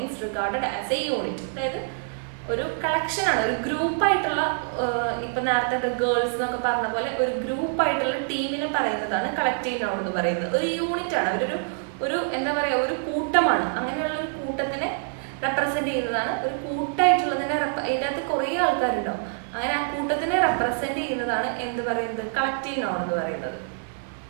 regarded as A unit. അതായത് ഒരു കളക്ഷനാണ്, ഒരു ഗ്രൂപ്പായിട്ടുള്ള, ഇപ്പം നേരത്തെ ഗേൾസ് എന്നൊക്കെ പറഞ്ഞ പോലെ ഒരു ഗ്രൂപ്പായിട്ടുള്ള ടീമിനെ പറയുന്നതാണ് കളക്റ്റീവ് നൗൺ എന്ന് പറയുന്നത്. ഒരു യൂണിറ്റ് ആണ്, ഒരു എന്താ പറയുക, ഒരു കൂട്ടമാണ്. അങ്ങനെയുള്ള ഒരു കൂട്ടത്തിനെ റെപ്രസെന്റ് ചെയ്യുന്നതാണ്, ഒരു കൂട്ടായിട്ടുള്ളതിനെ അതിൻ്റെ അകത്ത് കുറേ ആൾക്കാരുണ്ടാവും, അങ്ങനെ ആ കൂട്ടത്തിനെ റെപ്രസെന്റ് ചെയ്യുന്നതാണ് എന്ത് പറയുന്നത്? കളക്റ്റീവ് നൗൺ എന്ന് പറയുന്നത്.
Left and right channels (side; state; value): left; silent; digital silence